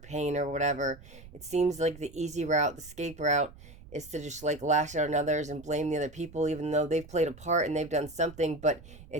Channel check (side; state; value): right; noise; rumble, 19 dB below the sound